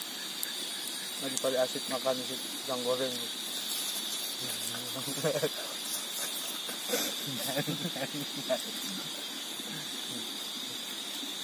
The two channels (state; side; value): identical; both; correlation 1.00